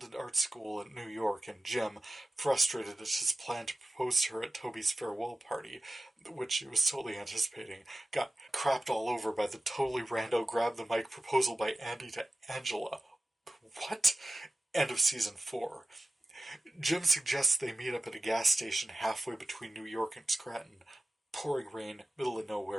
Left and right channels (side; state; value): both; normal; correlation 0.94